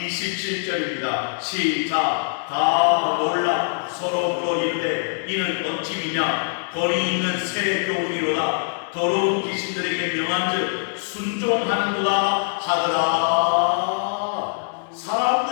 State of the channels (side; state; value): right; silent; digital silence